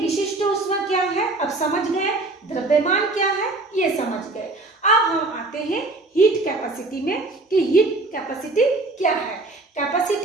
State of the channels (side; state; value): left; quieter; 3.1 dB